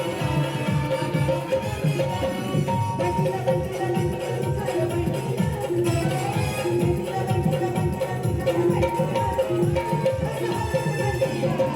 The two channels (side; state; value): both; identical; correlation 1.00